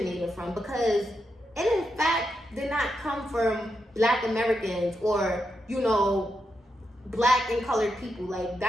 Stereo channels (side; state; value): both; normal; correlation 0.85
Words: from, because it in fact did not come from Black Americans or Black and colored people. Like,